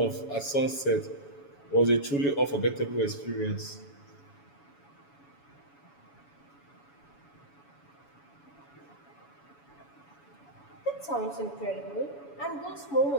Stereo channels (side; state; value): right; late; 7.1 ms